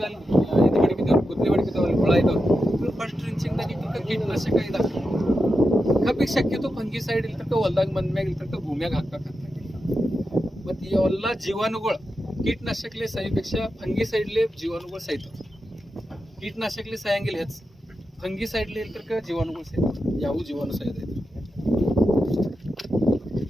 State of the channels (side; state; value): both; normal; correlation 0.89